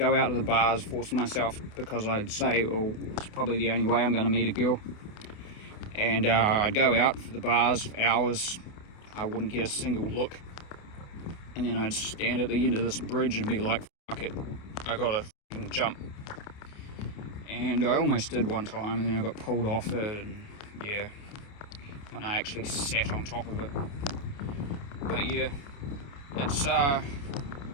out to the bars, force myself, because I'd say, well, it's probably the only way I'm going to meet a girl. And I'd go out for the bars for hours. I wouldn't get a single look. And then I'd stand at the end of this bridge and be like, fuck it, I gotta jump. And I almost did one time, and then I got pulled off it, and yeah, and I actually sat on top of it. But yeah, it's that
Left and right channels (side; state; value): right; late; 29 ms